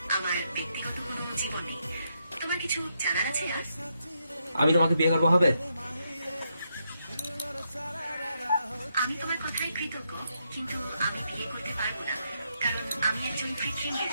আমার ব্যক্তিগত কোনো জীবন নেই। তোমার কিছু জানার আছে আর? আমি তোমাকে বিয়ে করবো, হবে? আমি তোমার কথায় কৃতজ্ঞ, কিন্তু আমি বিয়ে করতে পারবো না, কারণ আমি একজন কৃত্রিম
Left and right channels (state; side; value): inverted; both; correlation -0.80